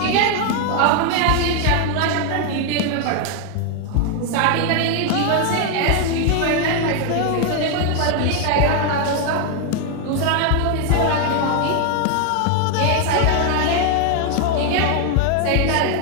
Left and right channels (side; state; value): both; different; correlation 0.01